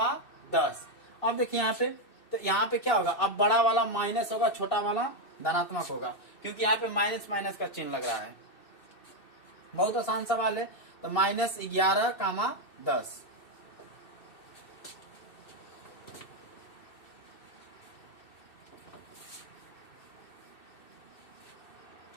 10। अब देखिए यहाँ पे, तो यहाँ पे क्या होगा, अब बड़ा वाला माइनस होगा, छोटा वाला धनात्मक होगा, क्योंकि यहाँ पे माइनस माइनस का चिन्ह लग रहा है। बहुत आसान सवाल है। तो -11, 10।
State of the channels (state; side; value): late; right; 2.6 ms